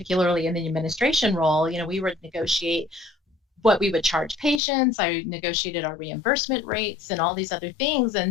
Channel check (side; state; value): right; drops out; at 4.6 s